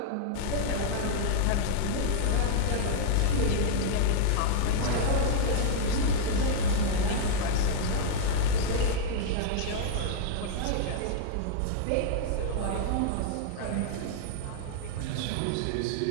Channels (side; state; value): both; different; correlation -0.01